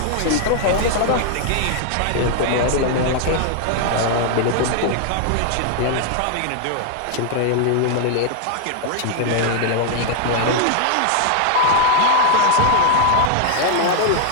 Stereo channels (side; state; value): both; different; correlation 0.00